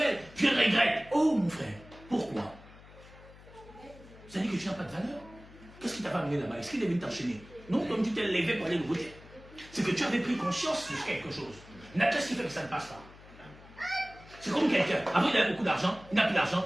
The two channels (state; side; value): noise; left; hum, 21 dB below the sound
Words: je regrette. Oh mon frère, pourquoi? Ça dit que tu n'as pas de valeur. Qu'est-ce qui t'a pas amené là-bas? Est-ce qu'il est venu t'enchaîner? Non, comme tu t'es levé pour aller le voter. C'est que tu avais pris conscience de quelque chose. Qu'est-ce qui fait que ça ne passe pas? C'est comme quelqu'un, avant il avait beaucoup d'argent, il n'a plus d'argent,